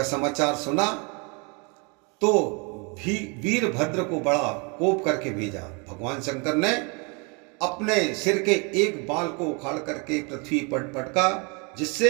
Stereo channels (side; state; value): left; quieter; 32.3 dB